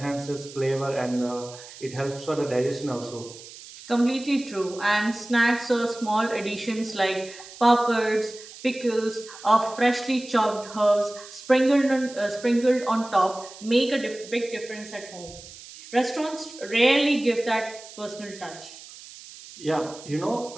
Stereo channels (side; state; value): right; noise; hiss, 17 dB below the sound